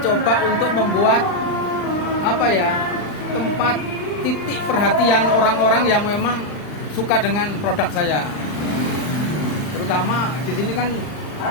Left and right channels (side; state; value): right; late; 39 ms